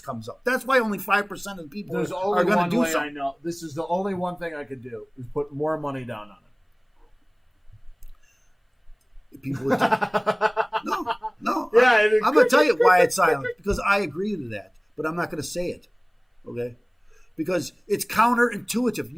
comes up. That's why only 5% of the people are going to do something. There's only one way I know. This is the only one thing I could do is put more money down on it. People would no. Yeah, I'm going to tell you why it's silent, because I agree to that, but I'm not going to say it. Okay? Because it's counterintuitive.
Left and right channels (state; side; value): identical; both; correlation 1.00